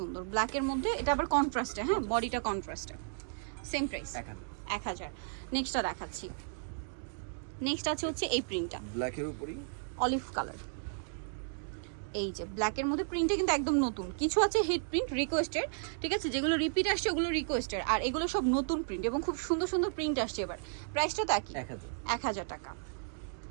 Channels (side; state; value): left; silent; digital silence